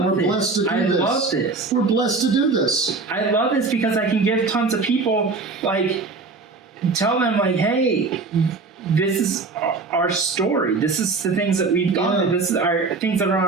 and we're this. blessed to do I this. love this. We're blessed to do this. I love this because I can give tons of people, like, tell them, like, hey, this is our story. This is the things that we've done. This is our things that are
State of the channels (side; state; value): left; quieter; 4.1 dB